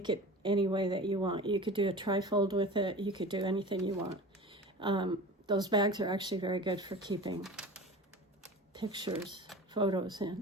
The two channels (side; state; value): both; normal; correlation 0.35